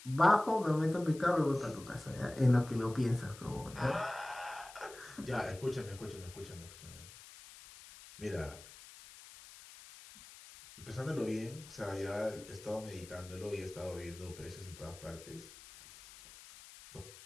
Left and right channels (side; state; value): left; noise; hiss, 18 dB below the sound